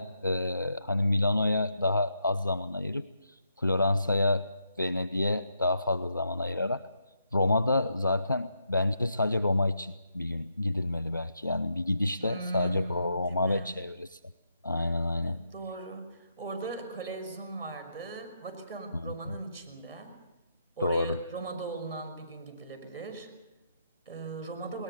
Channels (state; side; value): inverted; both; correlation -0.81